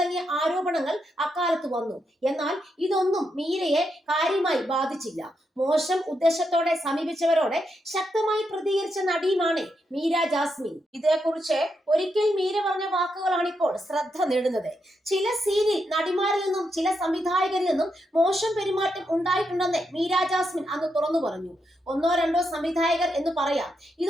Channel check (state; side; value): normal; both; correlation 0.82